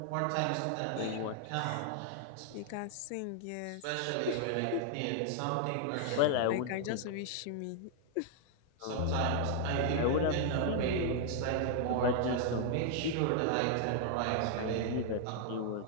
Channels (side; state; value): both; different; correlation 0.00